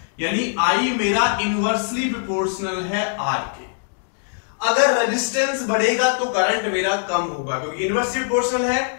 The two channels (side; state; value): right; silent; digital silence